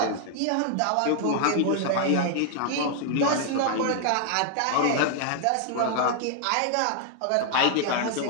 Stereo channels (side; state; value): both; different; correlation 0.00